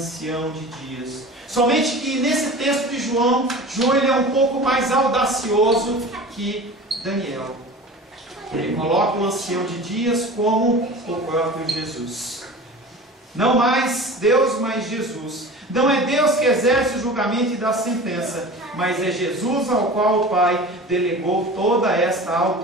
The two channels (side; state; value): both; normal; correlation 0.37